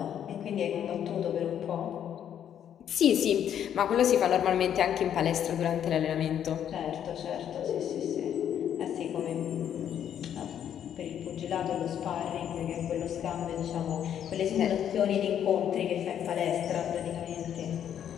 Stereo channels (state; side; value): quieter; right; 9.6 dB